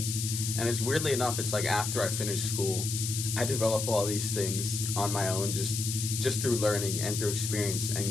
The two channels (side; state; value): left; noise; hiss, 3 dB below the sound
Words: And it's weirdly enough, it's like after I finished school, I develop all these things on my own, just through learning and through experience and